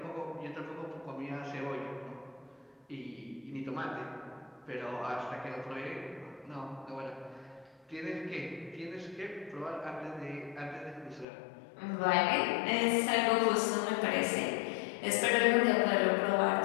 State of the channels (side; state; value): right; drops out; at 11.2 s